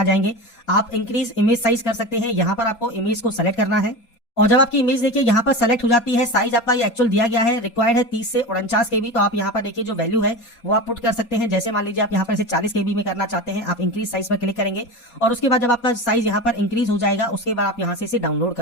जाएंगे। आप इंक्रीज इमेज साइज कर सकते हैं, यहाँ पर आपको इमेज को सेलेक्ट करना है। और जब आपकी इमेज देखिए यहाँ पर सेलेक्ट हो जाती है, साइज आपका ये एक्चुअल दिया गया है, रिक्वायर्ड है 30 से 49 केबी, तो आप यहाँ पर देखिए जो वैल्यू है वो आप पुट कर सकते हैं। जैसे मान लीजिए आप यहाँ पर इसे 40 केबी में करना चाहते हैं, आप इंक्रीज साइज पर क्लिक करेंगे और उसके बाद जब आपका साइज यहाँ पर इंक्रीज हो जाएगा, उसके बाद आप यहाँ से इसे डाउनलोड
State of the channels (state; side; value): late; right; 4.2 ms